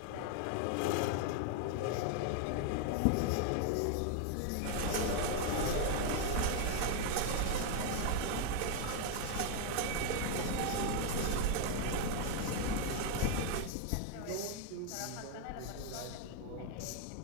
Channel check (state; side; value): different; both; correlation 0.01